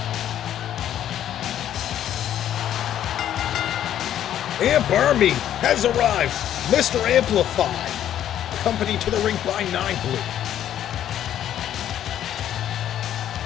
Amp Army has arrived. Mr. Amplified, accompanied to the ring by 9 Blue.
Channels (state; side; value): quieter; right; 11.0 dB